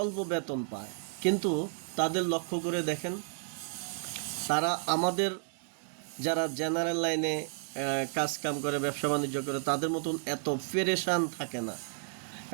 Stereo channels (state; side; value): silent; left; digital silence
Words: অল্প বেতন পায়, কিন্তু তাদের লক্ষ্য করে দেখেন, তারা আমাদের যারা জেনারেল লাইনে কাজ কাম করে, ব্যবসা বাণিজ্য করে, তাদের মতন এত পেরেশান থাকে না।